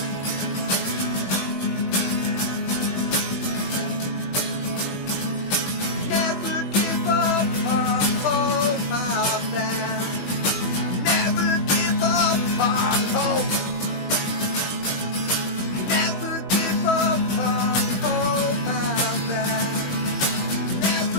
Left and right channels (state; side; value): late; right; 20 ms